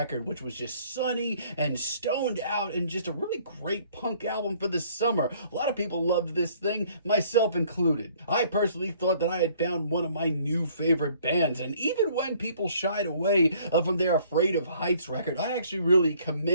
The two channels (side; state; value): both; inverted; correlation -0.59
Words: which was just sunny and stoned out and just a really great punk album for the summer. A lot of people loved this thing, myself included. I personally thought that I had found one of my new favorite bands, and even when people shied away from their Afraid of Heights record, I actually really